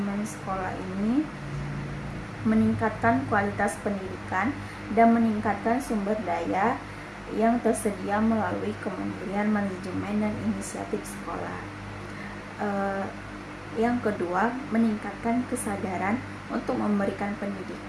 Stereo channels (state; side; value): identical; both; correlation 1.00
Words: sekolah ini meningkatkan kualitas pendidikan dan meningkatkan sumber daya yang tersedia melalui Kementerian Manajemen dan Inisiatif Sekolah. Yang kedua, meningkatkan kesadaran untuk memberikan